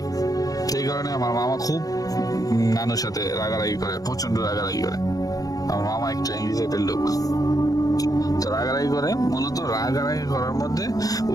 সেই কারণে আমার মামা খুব নানুর সাথে রাগারাগি করে, প্রচন্ড রাগারাগি করে। আমার মামা একটা ইংরেজিতে লোক, তো রাগারাগি করে। মূলত রাগারাগি করার মধ্যে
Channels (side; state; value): right; late; 0.18 ms